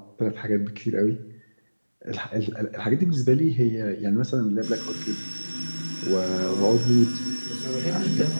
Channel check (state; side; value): inverted; both; correlation -1.00